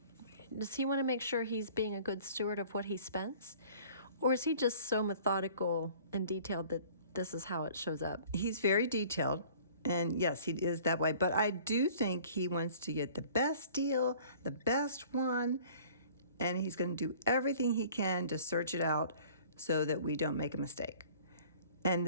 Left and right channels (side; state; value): both; inverted; correlation -0.50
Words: Does he want to make sure he's being a good steward of what he spends? Or is he just so methodical and detailed that this is how it shows up? He's very detailed, and yes, he is that way. But I do think he wants to get the best deal, the best one, and he's going to do everything he can to search it out so that we don't make a mistake. And